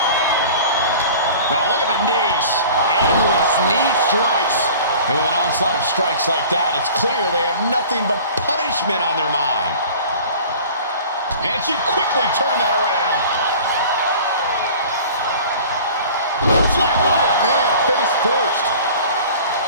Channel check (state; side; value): inverted; both; correlation -0.43